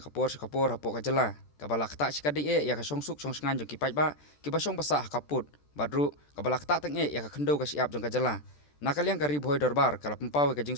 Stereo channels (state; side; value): late; right; 14 ms